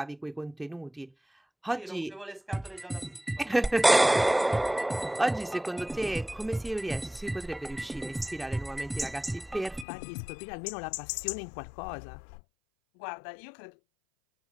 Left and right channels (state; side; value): drops out; right; at 9.9 s